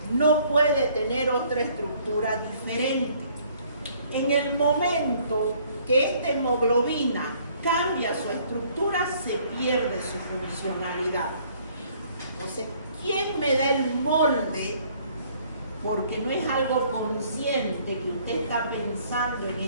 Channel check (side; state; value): both; inverted; correlation -0.60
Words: No puede tener otra estructura diferente. En el momento que esta hemoglobina cambia su estructura, se pierde su funcionalidad. Entonces, ¿quién me da el molde? Porque no es algo consciente que usted está pensando en